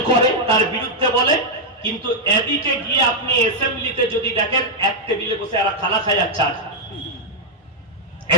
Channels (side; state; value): both; normal; correlation -0.02